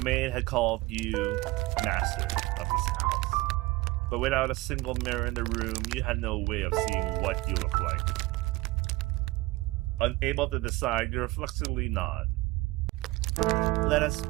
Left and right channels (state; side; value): quieter; left; 20.8 dB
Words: maid had called you master of this house. But without a single mirror in the room, you had no way of seeing what you looked like. Unable to decide, you reflexively nod. Let us